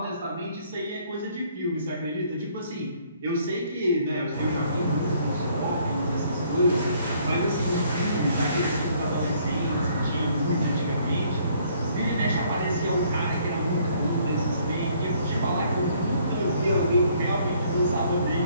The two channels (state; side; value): inverted; both; correlation -0.63